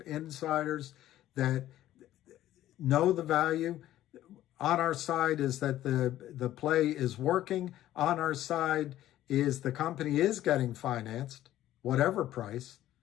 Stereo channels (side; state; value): right; quieter; 13.5 dB